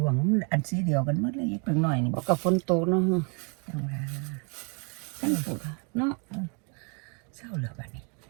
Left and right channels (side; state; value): left; quieter; 36.1 dB